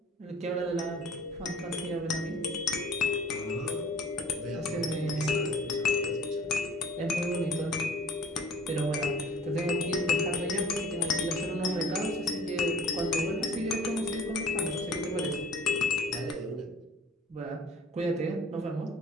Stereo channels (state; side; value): normal; both; correlation 0.48